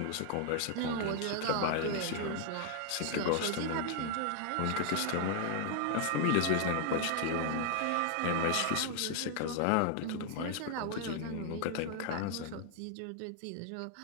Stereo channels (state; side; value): different; both; correlation 0.00